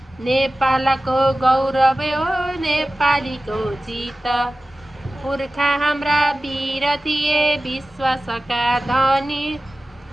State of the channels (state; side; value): normal; both; correlation 0.96